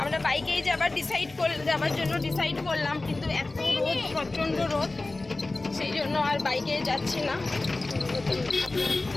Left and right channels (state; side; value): quieter; right; 3.1 dB